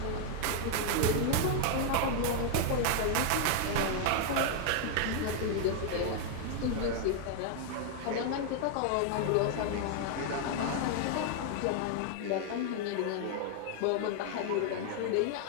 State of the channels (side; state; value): both; different; correlation 0.00